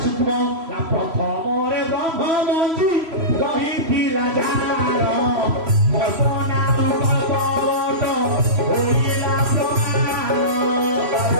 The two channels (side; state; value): left; late; 3.0 ms